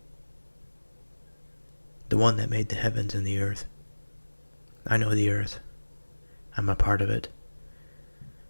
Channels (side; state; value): both; inverted; correlation -1.00